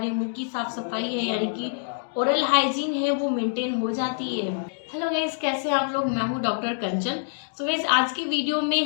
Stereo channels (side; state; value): right; silent; digital silence